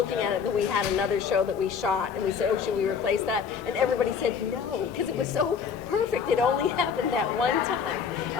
at it, that we had another show that we shot, and we said, should we replace that? And everybody said no, because it was so perfect. It only happened that one time.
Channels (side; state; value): right; quieter; 6.6 dB